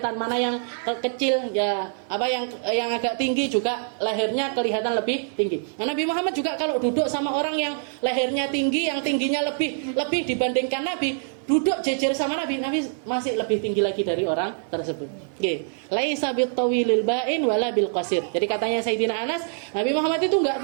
mana yang kecil ya, yang agak tinggi juga lehernya kelihatan lebih tinggi. Nah, Nabi Muhammad juga kalau duduk sama orang yang lehernya tinggi, yang tingginya lebih dibandingkan Nabi, duduk jejer sama Nabi masih lebih tinggi lagi dari orang tersebut. Laisa bitawilil ba'in wala bil qasir. Jadi katanya Sayyidina Anas, Nabi Muhammad itu enggak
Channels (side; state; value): left; silent; 56 dB below the other